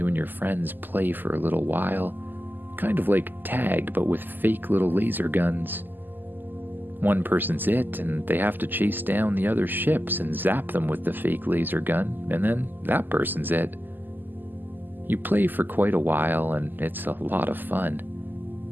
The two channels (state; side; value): late; left; 0.089 ms